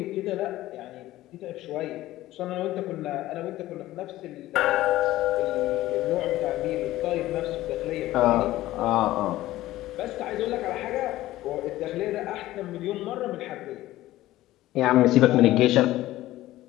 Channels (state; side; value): quieter; right; 15.8 dB